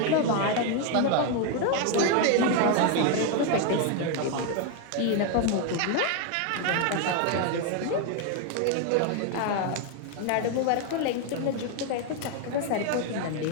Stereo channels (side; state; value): both; different; correlation 0.01